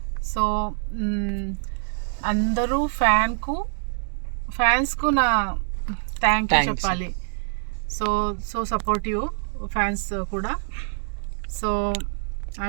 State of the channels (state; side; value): silent; left; digital silence